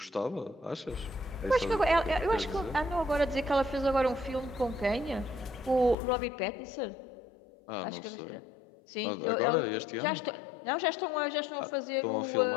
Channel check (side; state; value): right; drops out; at 6.0 s